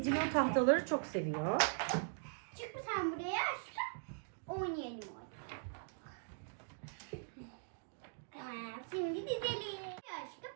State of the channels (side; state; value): left; silent; digital silence